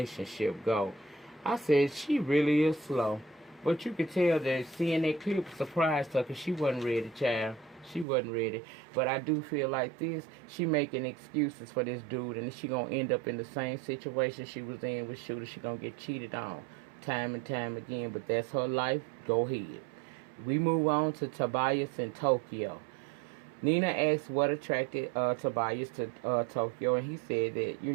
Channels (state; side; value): drops out; left; at 8.1 s